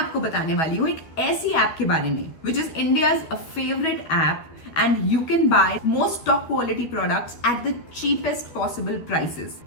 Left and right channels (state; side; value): late; right; 12 ms